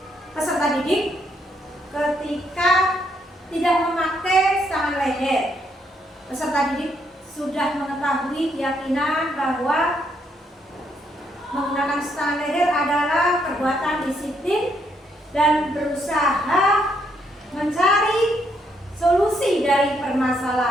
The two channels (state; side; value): normal; both; correlation 0.74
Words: peserta didik ketika tidak memakai stang leher. Peserta didik sudah mengetahui keyakinan bahwa menggunakan stang leher adalah perbuatan disiplin dan berusaha mencari solusi dari